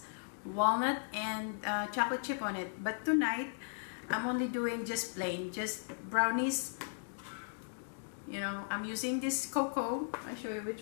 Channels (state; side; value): silent; right; digital silence